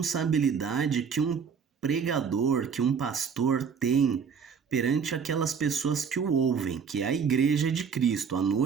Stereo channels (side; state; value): left; quieter; 6.5 dB